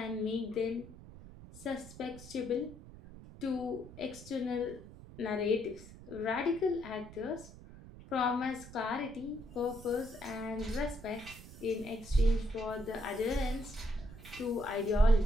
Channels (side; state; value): right; noise; rumble, 16 dB below the sound